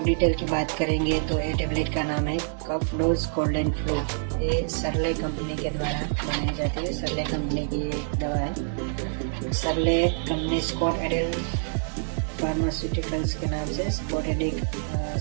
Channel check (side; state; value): left; silent; digital silence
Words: डिटेल की बात करेंगे। तो ये टेबलेट का नाम है कफ-डोज कोल्ड एंड फ्लू। ये सरले कंपनी के द्वारा बनाई जाती है। सरले कंपनी की एक दवा है। सरले कंपनी स्कॉट एडेल फार्मास्यूटिकल्स के नाम से स्कॉट